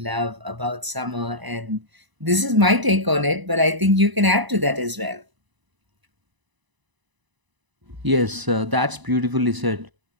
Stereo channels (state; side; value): late; left; 1.0 ms